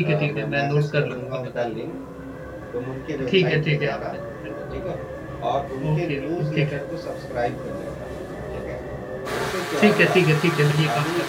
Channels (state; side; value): identical; both; correlation 1.00